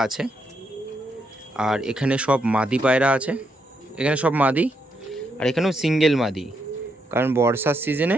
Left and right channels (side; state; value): both; normal; correlation 0.79